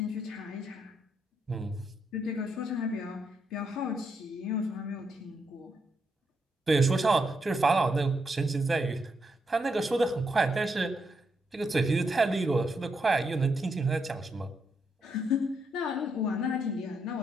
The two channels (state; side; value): normal; both; correlation 0.80